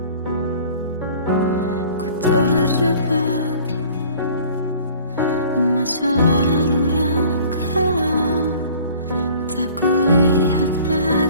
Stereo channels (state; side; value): inverted; both; correlation -0.49